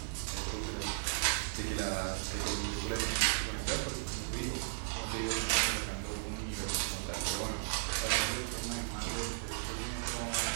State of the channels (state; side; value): silent; left; 54 dB below the other